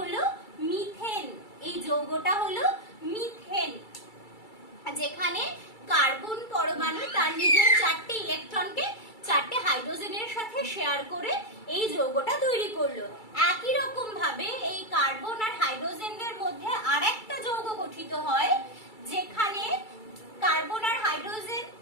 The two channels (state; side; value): late; right; 2.3 ms